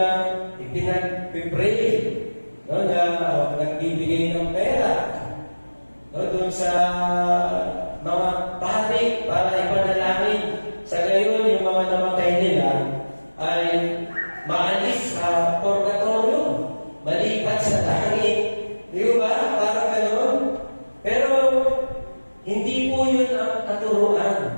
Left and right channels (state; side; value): inverted; both; correlation -1.00